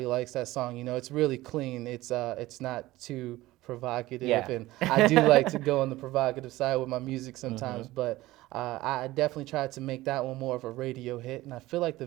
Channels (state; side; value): quieter; left; 17.7 dB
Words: likes that song. It's really clean. It's not too provocative, Yeah. and I do like to go on the provocative side with my music sometimes, but I definitely tried to make that one more of a radio hit, and I feel like the